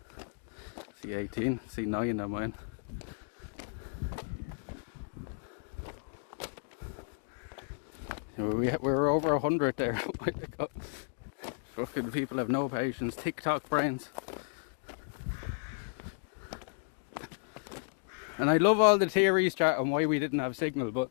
C18, C9 on mine. We're over 100 there. Oh my God. Fucking people have no patience. TikTok brains. And I love all the theories, chat, on why we didn't have signal, but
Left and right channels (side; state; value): right; silent; digital silence